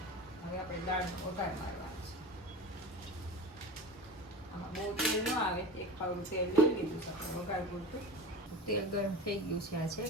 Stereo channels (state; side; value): normal; both; correlation 0.32